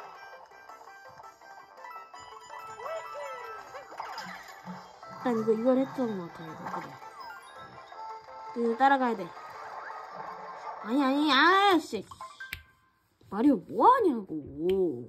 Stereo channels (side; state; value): both; identical; correlation 1.00